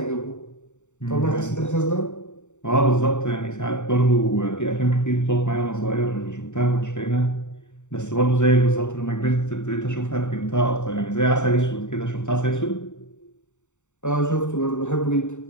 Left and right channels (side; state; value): right; late; 0.84 ms